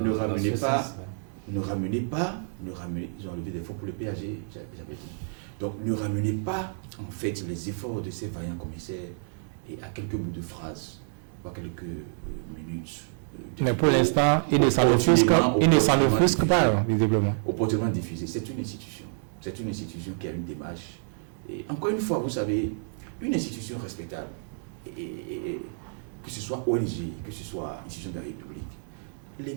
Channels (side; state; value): left; silent; digital silence